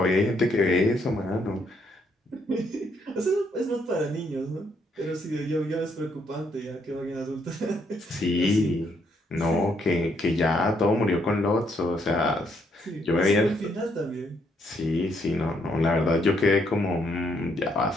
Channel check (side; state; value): both; normal; correlation 0.72